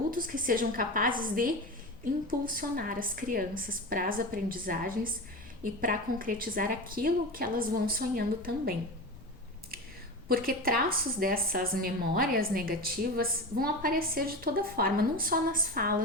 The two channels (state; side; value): noise; left; rumble, 23 dB below the sound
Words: que sejam capazes de impulsionar as crianças para as aprendizagens e para concretizar aquilo que elas vão sonhando também. Porque traços dessas memórias negativas vão aparecer de toda forma, não só nas